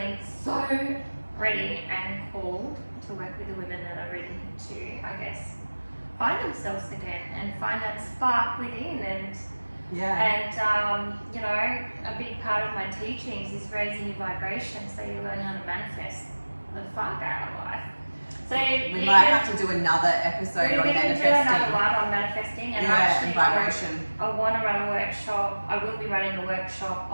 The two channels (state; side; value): inverted; both; correlation -1.00